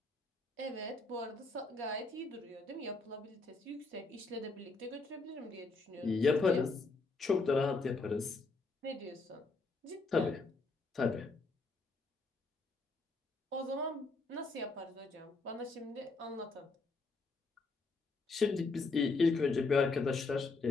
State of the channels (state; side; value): quieter; right; 3.7 dB